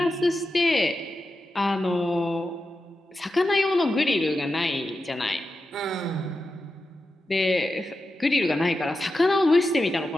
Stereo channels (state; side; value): normal; both; correlation 0.90